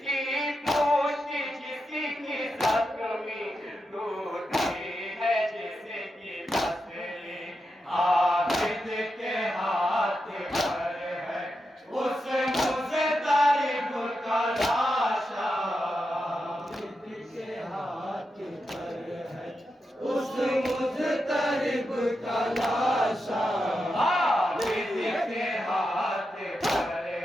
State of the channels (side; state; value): both; normal; correlation 0.87